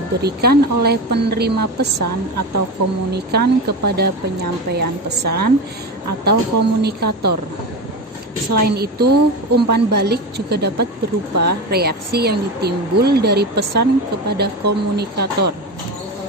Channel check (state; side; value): normal; both; correlation 0.22